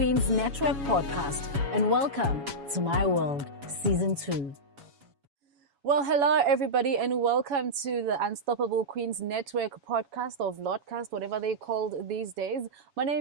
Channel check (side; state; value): left; late; 7.1 ms